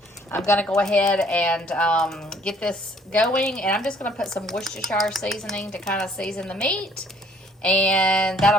I'm going to go ahead and get this going, and I'm just going to put some Worcestershire seasoning to kind of season the meat. And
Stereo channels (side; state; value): both; normal; correlation 0.60